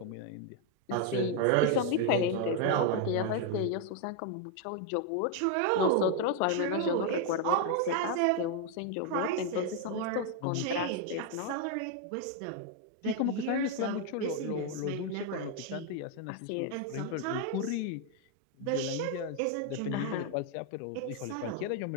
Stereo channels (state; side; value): different; both; correlation 0.01